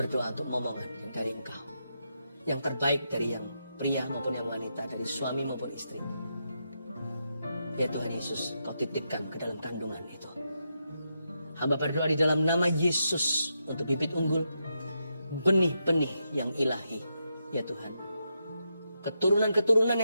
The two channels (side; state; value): both; inverted; correlation -0.84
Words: untuk momongan yang dari Engkau. Yang terbaik dari yang pria maupun yang wanita, dari suami maupun istri. Ya Tuhan Yesus, Kau titipkan ke dalam kandungan itu. Hamba berdoa di dalam nama Yesus untuk bibit unggul, benih-benih yang ilahi. Ya Tuhan, keturunan-keturunan